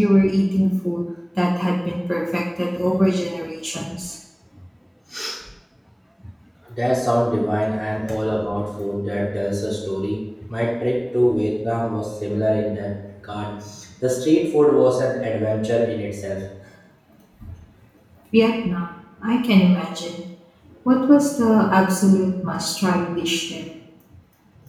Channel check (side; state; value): both; identical; correlation 1.00